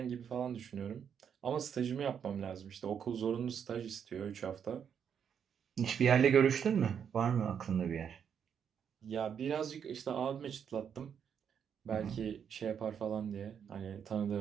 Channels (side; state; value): left; quieter; 7.8 dB